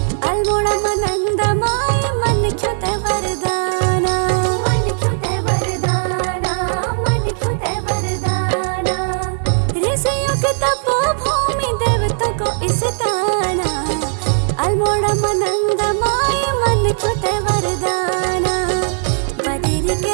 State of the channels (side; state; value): left; silent; digital silence